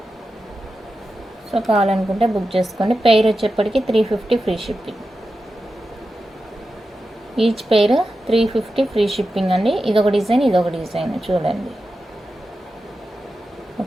సో కావాలనుకుంటే బుక్ చేసుకోండి. పెయిర్ వచ్చేప్పటికి 350 free shipping. Each pair 350 free shipping అండి. ఇదొక డిజైన్, ఇదొక డిజైన్ చూడండి.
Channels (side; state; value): both; normal; correlation 0.91